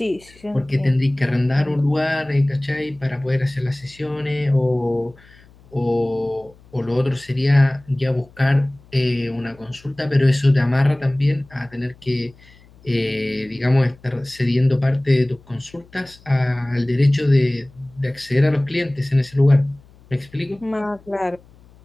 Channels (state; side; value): noise; left; hum, 26 dB below the sound